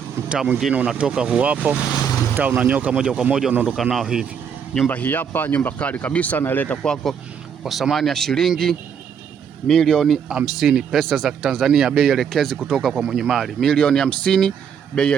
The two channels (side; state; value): left; quieter; 7.5 dB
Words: Mtaa mwingine unatoka huu hapo. Mtaa unanyoka moja kwa moja unaondoka nao hivi. Nyumba hii hapa, nyumba kali kabisa, naileta kwako kwa thamani ya shilingi milioni 50 pesa za Tanzania, bei elekezi kutoka kwa mwenye mali. Milioni 50 bei